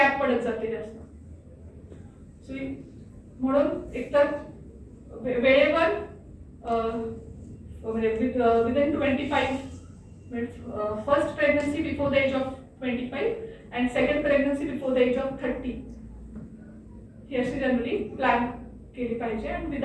पडत जाते जास्त. म्हणून एकतर वेळेवर within 25 first pregnancy before the age of 25 and second pregnancy before the age of 30 ही अशी जनरली प्लॅन केली पाहिजे and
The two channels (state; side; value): identical; both; correlation 1.00